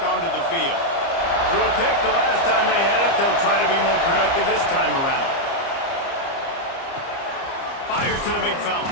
the field. Threw a pick the last time they had it. They'll try to be more productive this time around. Fires to the big fella.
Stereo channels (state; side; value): late; right; 30 ms